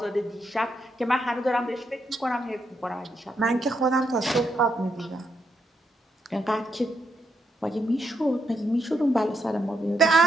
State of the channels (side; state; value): both; normal; correlation 0.79